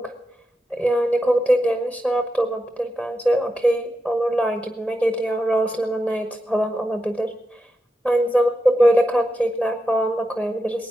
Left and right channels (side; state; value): both; normal; correlation 0.88